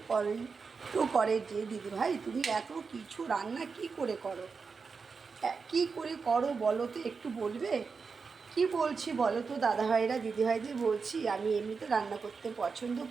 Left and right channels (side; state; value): left; quieter; 5.0 dB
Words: করে যে দিদি ভাই তুমি এত কিছু রান্না কি করে করো, কি করে করো বলো তো, একটু বলবে? কি বলছি বলো তো দাদা ভাইরা দিদি ভাইদের, বলছি আমি এমনিতে রান্না করতে পছন্দ